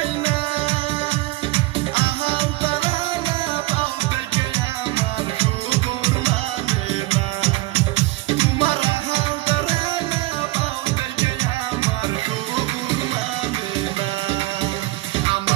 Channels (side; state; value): left; quieter; 20.3 dB